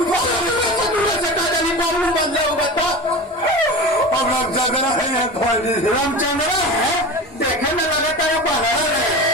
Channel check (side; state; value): both; normal; correlation 0.30